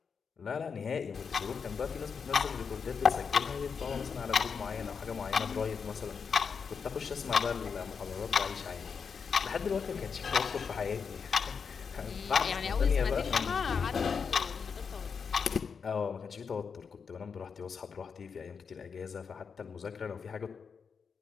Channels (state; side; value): quieter; right; 6.0 dB